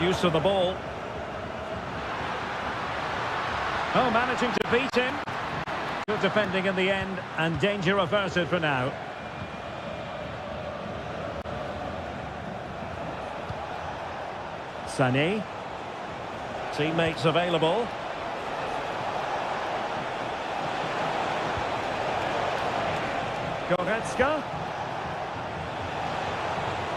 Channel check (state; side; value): identical; both; correlation 1.00